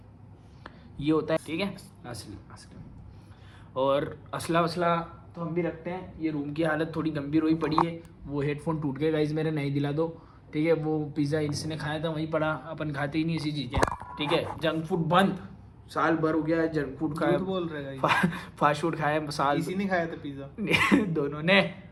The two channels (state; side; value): identical; both; correlation 1.00